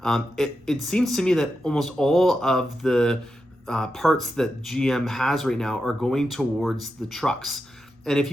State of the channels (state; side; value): normal; both; correlation 0.88